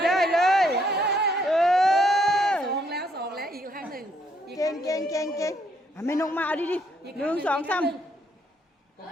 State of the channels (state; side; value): normal; both; correlation 0.70